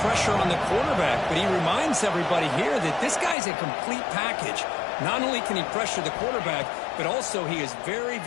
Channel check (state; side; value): drops out; right; at 3.4 s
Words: pressure on the quarterback, but he reminds everybody here that this guy's a complete package. Not only can he pressure the quarterback, but also he is very,